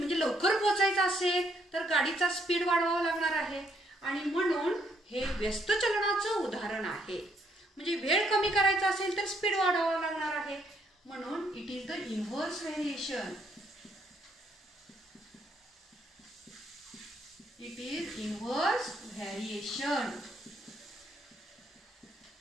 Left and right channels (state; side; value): normal; both; correlation 0.72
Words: लवकर पोहोचायचं असेल तर गाडीचा स्पीड वाढवावा लागणार आहे, आणि म्हणून हे व्यस्त चलनाचं उदाहरण आहे. म्हणजे वेळ कमी करायचा असेल तर स्पीड वाढवावा लागणार आहे, म्हणून it is the inverse variation. It is inverse variation.